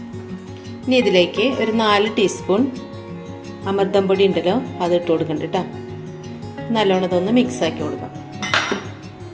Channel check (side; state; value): both; identical; correlation 1.00